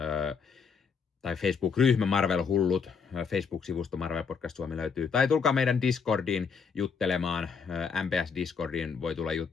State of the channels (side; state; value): right; quieter; 5.9 dB